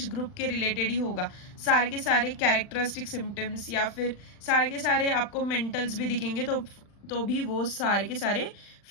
ग्रुप के रिलेटेड ही होगा. सारे के सारे कैरेक्टरिस्टिक सिम्टम्स या फिर सारे के सारे आपको मेंटल्स भी दिखेंगे तो भी वो सारे के सारे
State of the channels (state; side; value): late; right; 40 ms